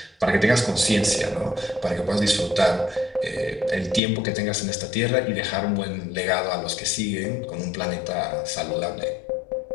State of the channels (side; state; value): right; drops out; at 4.0 s